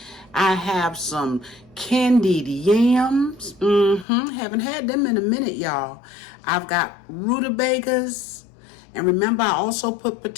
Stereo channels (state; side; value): drops out; right; at 4.0 s